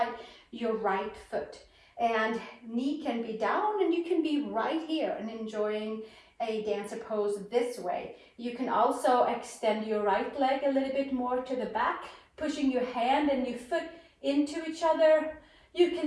your right foot, and knee can be down and you can be right here and enjoying a dancer pose this way. You can also extend your right leg a little bit more to the back, pushing your hand and your foot into each other. You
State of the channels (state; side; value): identical; both; correlation 1.00